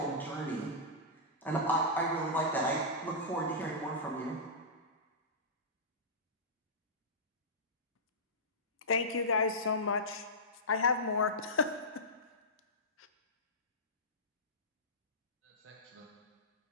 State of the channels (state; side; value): normal; both; correlation -0.15